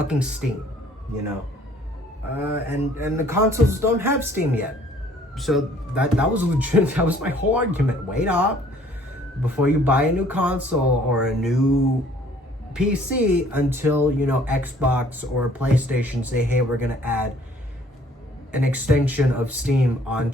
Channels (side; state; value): both; normal; correlation 0.58